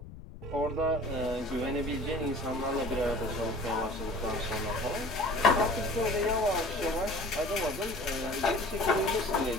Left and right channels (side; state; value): left; noise; rumble, 14 dB below the sound